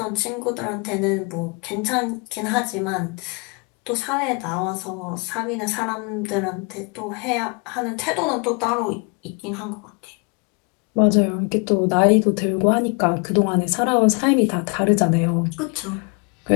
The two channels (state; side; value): quieter; right; 32.9 dB